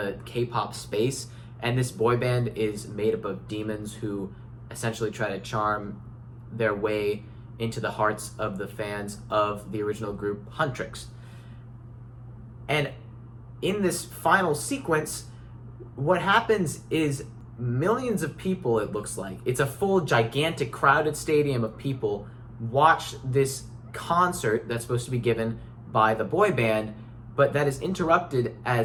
K-pop space, and this boy band is made up of demons who essentially try to charm their way into the hearts of the fans of the original group Huntrix. And in this final sequence, what happens is millions of people, it looks like, it's a full gigantic crowded stadium of people, watch this concert that's supposed to be given by the boy band, but that is interrupted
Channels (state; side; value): identical; both; correlation 1.00